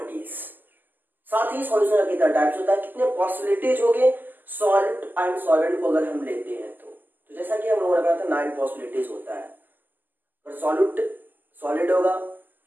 साथ ही सॉल्यूशन का कितना टाइप्स होता है, कितने पॉसिबिलिटीज हो गए सॉल्ट एंड सॉल्वेंट को अगर हम लेते हैं तो जैसा कि हम लोगों ने कहा था 9 पॉसिबिलिटीज होता है। अगर सॉलिड होगा,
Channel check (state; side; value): late; left; 0.088 ms